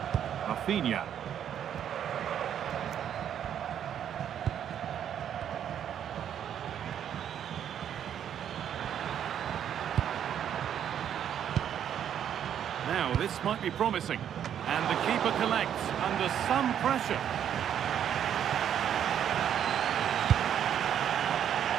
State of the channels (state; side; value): quieter; left; 9.4 dB